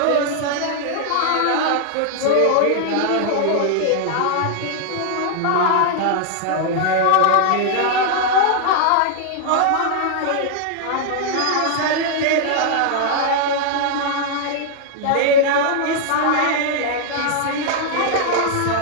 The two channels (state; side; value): different; both; correlation 0.00